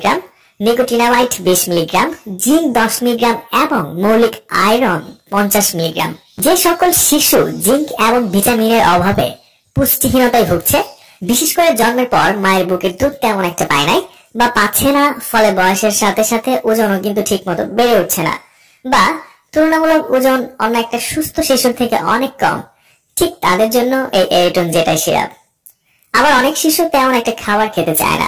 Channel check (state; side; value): identical; both; correlation 1.00